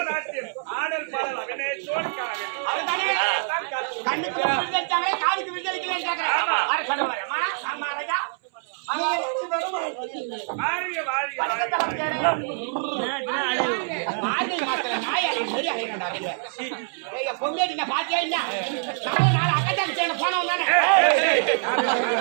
காலுக்கு விடுதலைக்கு பொங்கேட்டி பாத்தியா இல்ல நாலு அக்கட்டாங்க சேர்ந்து போனவன் தானே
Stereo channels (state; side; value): silent; left; 62 dB below the other